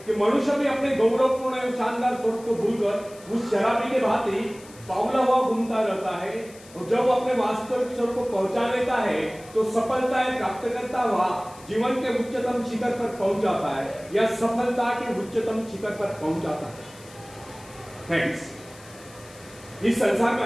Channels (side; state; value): left; noise; hiss, 22 dB below the sound